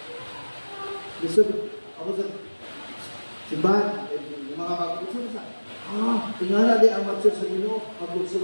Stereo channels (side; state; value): both; inverted; correlation -1.00